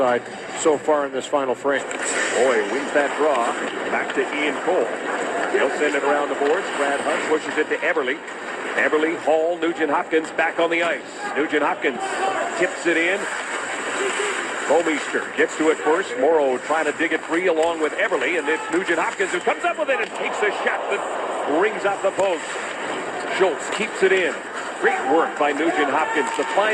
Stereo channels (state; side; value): identical; both; correlation 1.00